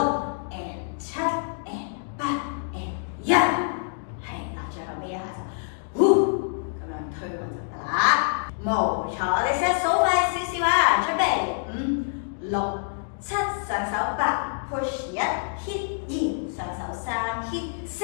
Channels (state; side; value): silent; right; digital silence